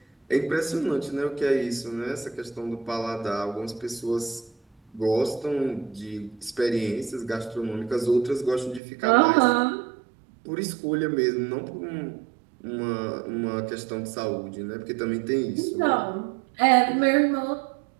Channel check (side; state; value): left; drops out; at 8.8 s